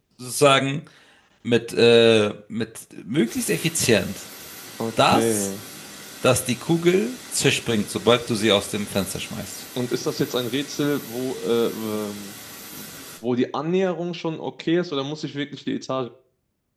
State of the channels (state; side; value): identical; both; correlation 1.00